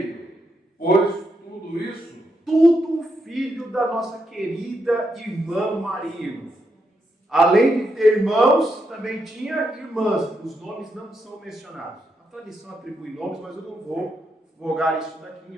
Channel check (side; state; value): both; normal; correlation 0.81